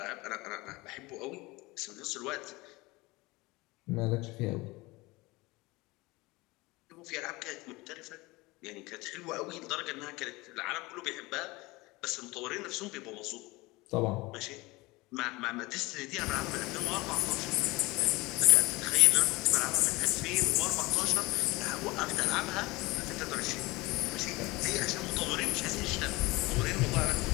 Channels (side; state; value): right; quieter; 22.4 dB